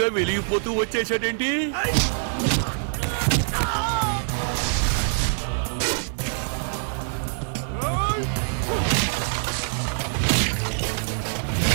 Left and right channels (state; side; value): silent; left; digital silence